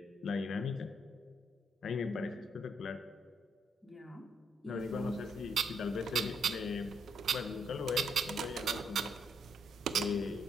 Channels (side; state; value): both; normal; correlation 0.73